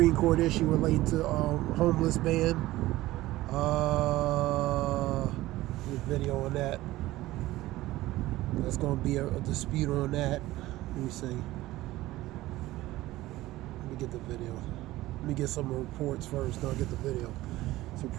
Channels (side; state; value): left; quieter; 17.1 dB